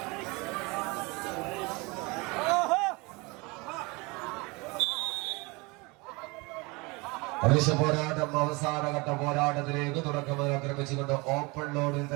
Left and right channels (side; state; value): left; quieter; 26.4 dB